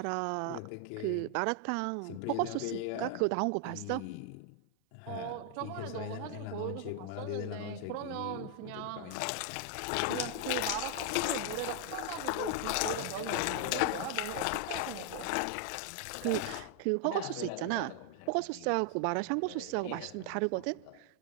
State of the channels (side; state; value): both; different; correlation 0.00